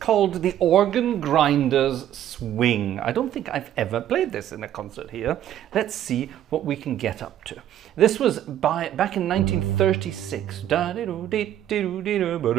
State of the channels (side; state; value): left; quieter; 11.4 dB